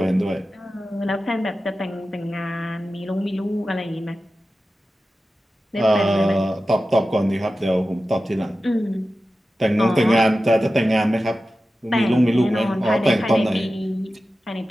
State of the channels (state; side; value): normal; both; correlation 0.94